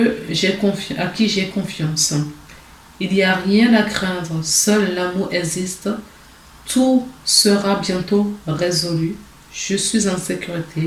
à qui j'ai confiance. Il n'y a rien à craindre, seul l'amour existe. Tout sera bientôt résolu. Je suis en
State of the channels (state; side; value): identical; both; correlation 1.00